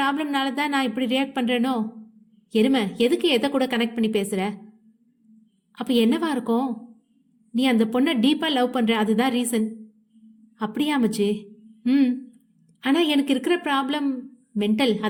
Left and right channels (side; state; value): both; identical; correlation 1.00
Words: தான் நான் இப்படி ரியாக்ட் பண்றேனோ? எருமை, எதுக்கு எதை கூட கனெக்ட் பண்ணி பேசுற? அப்ப என்னவா இருக்கும்? நீ அந்த பொண்ணை டீப்பா லவ் பண்ற, அதுதான் ரீசன். அப்படியா மச்சி? ம். ஆனால் எனக்கு இருக்கிற ப்ராப்ளம் மென்டல்.